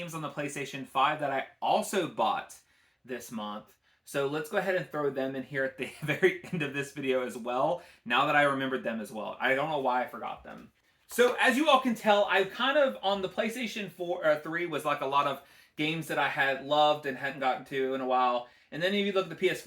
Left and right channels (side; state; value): both; identical; correlation 1.00